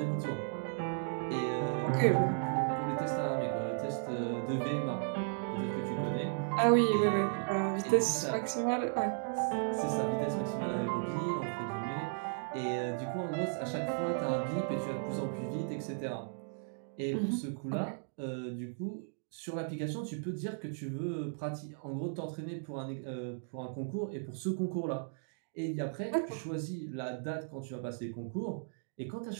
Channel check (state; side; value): silent; left; digital silence